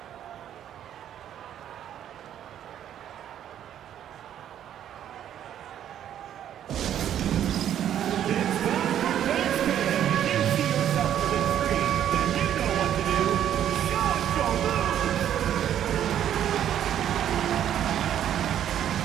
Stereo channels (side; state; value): left; quieter; 10.4 dB